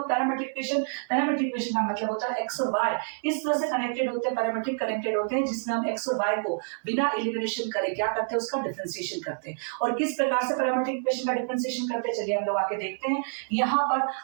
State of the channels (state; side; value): silent; left; 60 dB below the other